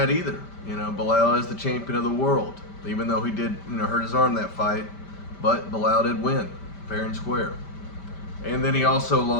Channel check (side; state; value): right; late; 5.1 ms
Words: either. Bilal is the champion of the world, even though he did hurt his arm that fight. But Bilal did win, fair and square. And then he also